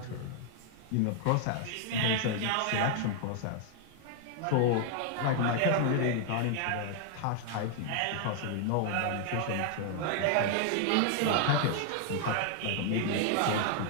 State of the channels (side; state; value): both; different; correlation 0.00